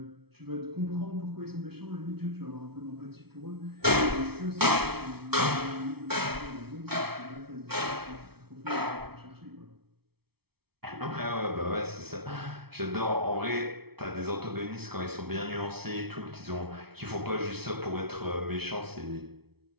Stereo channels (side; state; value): left; late; 0.96 ms